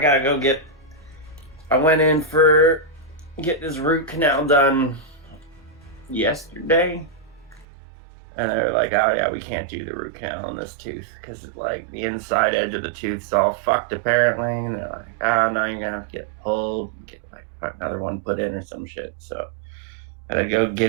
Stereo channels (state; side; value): drops out; left; at 7.7 s